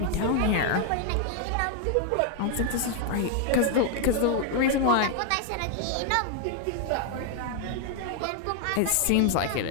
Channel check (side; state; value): both; different; correlation 0.00